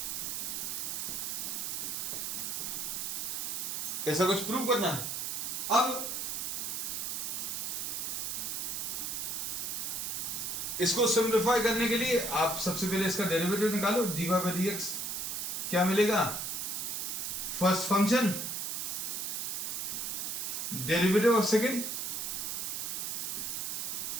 ऐसा कुछ prove करना है। अब इसको सिंप्लीफाई करने के लिए आप सबसे पहले इसका डेरिवेटिव निकालो, dy by dx क्या मिलेगा, first function derivative of second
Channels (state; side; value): noise; right; hiss, 2 dB below the sound